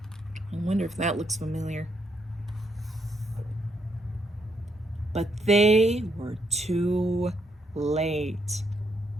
I wonder if that looks familiar. But they were too late.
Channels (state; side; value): normal; both; correlation 0.76